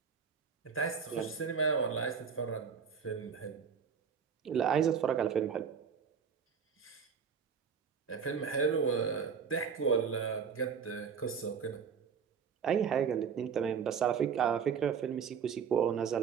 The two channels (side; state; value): left; quieter; 6.5 dB